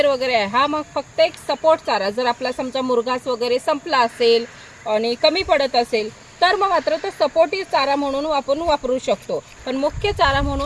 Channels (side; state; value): both; identical; correlation 1.00